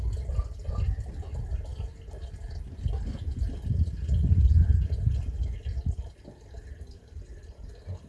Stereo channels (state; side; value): identical; both; correlation 1.00